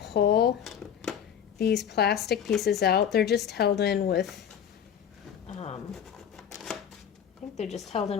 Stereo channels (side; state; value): right; quieter; 8.6 dB